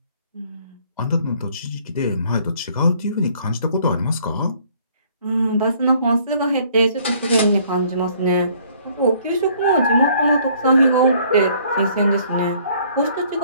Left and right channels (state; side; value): inverted; both; correlation -0.60